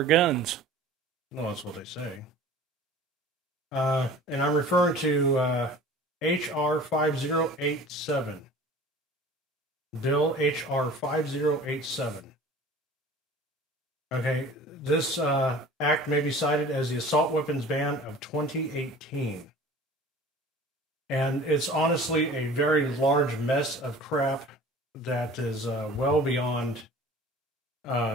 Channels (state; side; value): normal; both; correlation 0.44